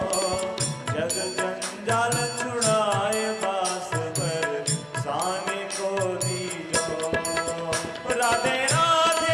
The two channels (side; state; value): both; identical; correlation 1.00